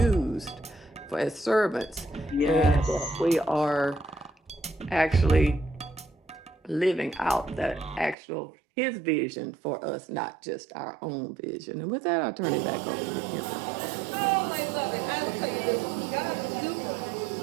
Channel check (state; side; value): drops out; left; at 8.2 s